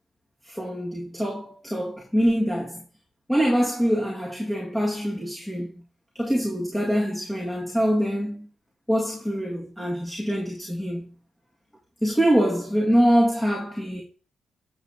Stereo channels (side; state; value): both; normal; correlation 0.97